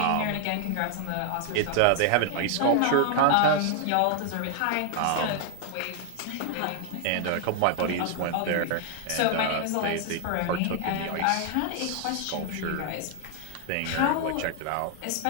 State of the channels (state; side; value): different; both; correlation 0.00